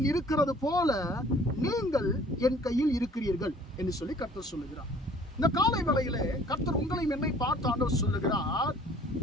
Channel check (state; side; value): normal; both; correlation 0.53